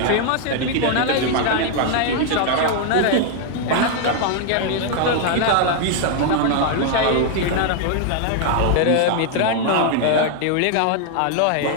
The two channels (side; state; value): both; different; correlation 0.00